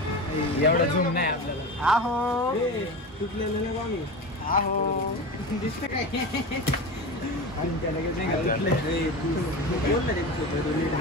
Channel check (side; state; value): both; normal; correlation 0.27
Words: एवढा झूम नाही आपल्याला. आहो तुटलेलं नाही आम्ही. आहो दिसतं काय.